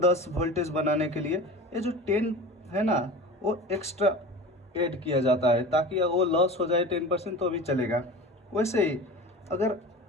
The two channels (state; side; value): normal; both; correlation 0.34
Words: वोल्टेज बनाने के लिए ये जो 10 है ना, वो एक्स्ट्रा ऐड किया जाता है, ताकि वो लॉस हो जाए 10% तो भी चलेगा। वैसे ही अगर